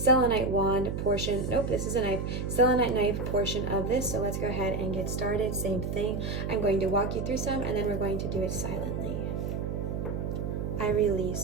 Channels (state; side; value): noise; right; hum, 3 dB below the sound